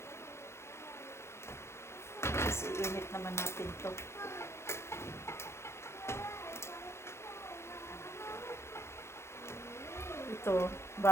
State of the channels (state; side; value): late; right; 0.13 ms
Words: Kasi init naman natin to. Ito,